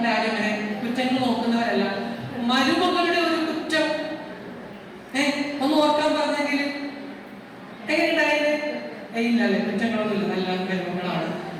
ആരും അങ്ങനെ കുറ്റങ്ങൾ നോക്കുന്നവരല്ല. മരുമകളുടെ ഒരു കുറ്റം ഒന്ന് ഓർക്കാൻ പറഞ്ഞെങ്കിൽ എങ്ങനെയുണ്ടായത്? ഇല്ലല്ലേ, കുറ്റങ്ങളൊന്നുമില്ല, നല്ല മരുമകളാണ്.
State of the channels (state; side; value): identical; both; correlation 1.00